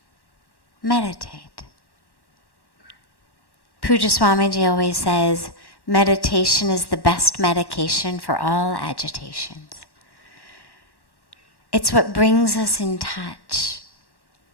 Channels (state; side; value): late; right; 1.1 ms